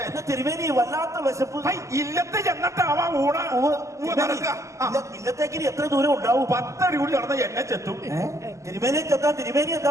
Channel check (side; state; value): left; late; 0.15 ms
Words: തിരുമേനി വല്ലാത്ത വിശപ്പ്. ഇല്ലത്തെ ചെന്നിട്ടാവാ ഊണ ഇല്ലത്തേക്ക് എത്ര ദൂരം ഉണ്ടാവും? 10 അടി കൂടി നടന്ന എന്നെ ചെത്തും. തിരുമേനി ചെത്താൻ തിരുമേനി എന്താ